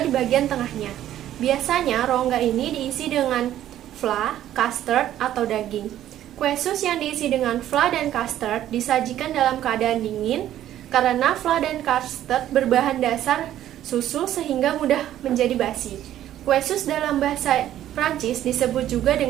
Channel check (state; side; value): quieter; left; 12.2 dB